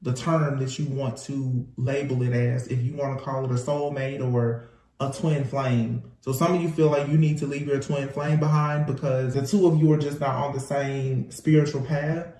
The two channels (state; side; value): identical; both; correlation 1.00